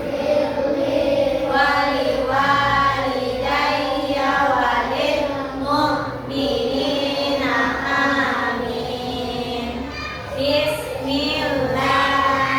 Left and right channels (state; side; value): identical; both; correlation 1.00